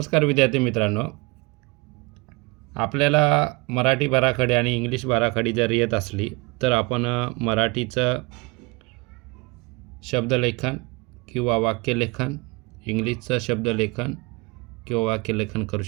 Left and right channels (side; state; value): left; quieter; 26.1 dB